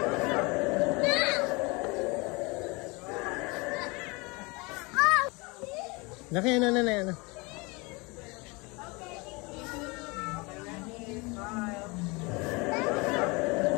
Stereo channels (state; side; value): quieter; right; 26.9 dB